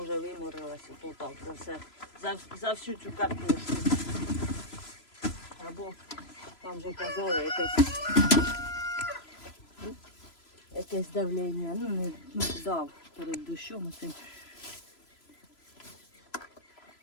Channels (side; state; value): right; late; 3.0 ms